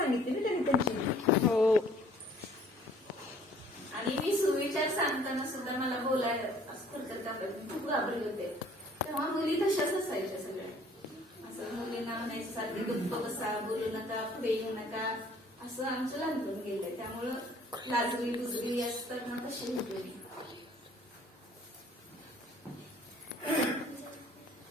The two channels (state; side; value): normal; both; correlation 0.56